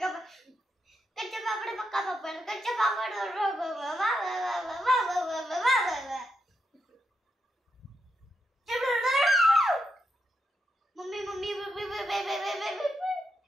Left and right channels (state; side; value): normal; both; correlation 0.83